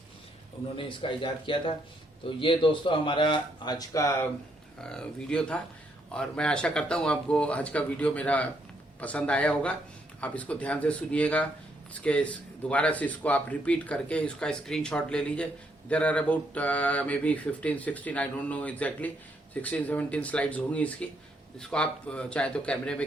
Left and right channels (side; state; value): both; normal; correlation 0.74